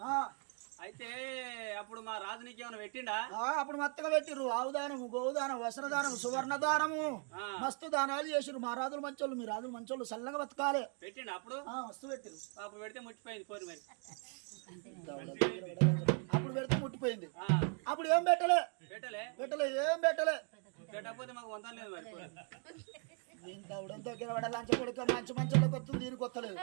అయితే అప్పుడు మా రాజు నీకు ఏమైనా పెట్టిండా అప్పుడు మత్తగా పెట్టిర్రు ఆవుదానము గోదానం వస్త్రదానం సువర్ణదానము మస్తు దానాలు చేసిరు మా రాజులు మంచోళ్ళు మీ రాజులు మంచోళ్ళు చల్లగా బతకాలి పెట్టిండు అప్పుడు వస్తు పెట్టిరు అప్పుడు పెడితే ముట్టిపోయింది పోరు మరి అప్పుడు పెడితే ముట్టిపోయింది అప్పుడు ఏం పెట్టలే ఏం పెట్టలే పెట్టకపోతే మాకు వంతం లేదు మరి దీనికి అవడం దగ్గర పడ లంచ కొడుకు మంచి మంచోళ్ళకి వస్తుంది దీనికి వస్తలేదు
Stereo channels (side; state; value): left; quieter; 38.8 dB